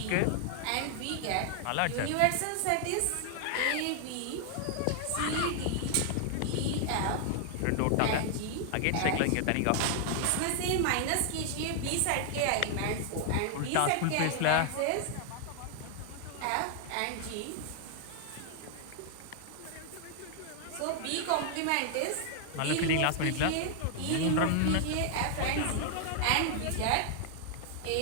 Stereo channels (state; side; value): different; both; correlation 0.00